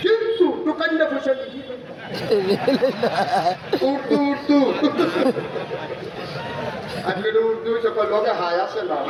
কিন্তু দোকানটা পয়সা দিচ্ছি। উর্দু উর্দু আজকে উর্দু সকল লোকে হাই আসে না,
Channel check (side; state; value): both; identical; correlation 1.00